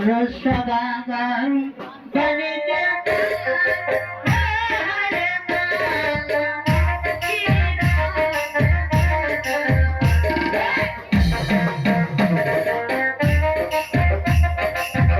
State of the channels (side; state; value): both; identical; correlation 1.00